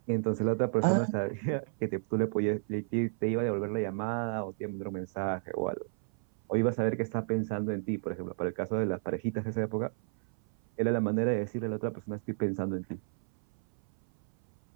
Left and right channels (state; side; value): silent; left; 57 dB below the other